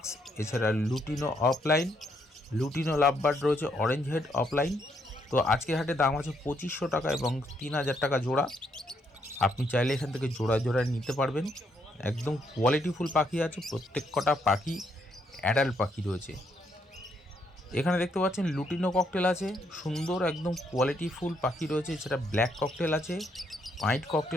এছাড়া লুটিনো অফলাইন, লুটিনো লাভবার্ড রয়েছে, অরেঞ্জ হেড অফলাইন। তো আজকের হাটে দাম আছে 2500 টাকা এবং 3000 টাকা জোড়া। আপনি চাইলে এখান থেকে জোড়া জোড়া নিতে পারবেন। একদম কোয়ালিটিফুল পাখি আছে, প্রত্যেক কটা পাখি অ্যাডাল্ট পাখি রয়েছে। এখানে দেখতে পাচ্ছেন লুটিনো ককটেল আছে, সুন্দর একদম কোয়ালিটিফুল পাখি রয়েছে। এছাড়া ব্ল্যাক ককটেল আছে, পাইট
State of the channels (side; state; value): both; normal; correlation 0.74